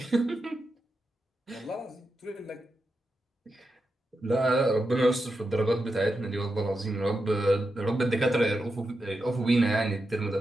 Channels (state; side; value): normal; both; correlation 0.88